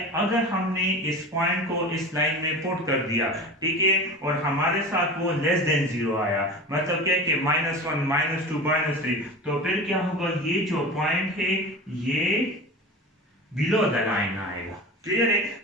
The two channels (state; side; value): normal; both; correlation 0.32